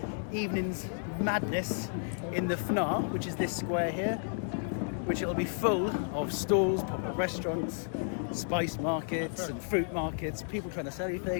evening's madness in the Fnaa, which is this square here, which it'll be full of stalls, pop-up restaurants, spice markets and fruit markets, people trying to sell you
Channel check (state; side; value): silent; right; digital silence